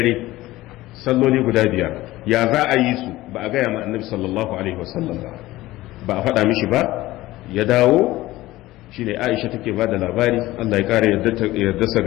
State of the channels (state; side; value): quieter; right; 17.3 dB